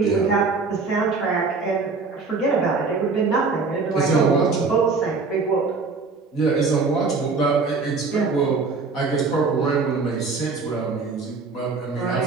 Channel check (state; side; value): quieter; left; 4.3 dB